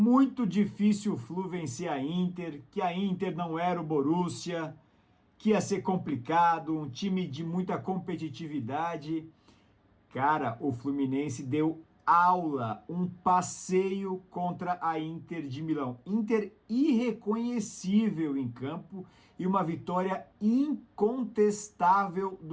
difícil o Flu vencer a Inter, que a Inter não era o Borussia, que ia ser complicado, um time de muita competitividade. Cara, o Fluminense deu aula, um passeio contra a Inter de Milão. Inter irreconhecível em campo e uma vitória incontestável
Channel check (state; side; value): identical; both; correlation 1.00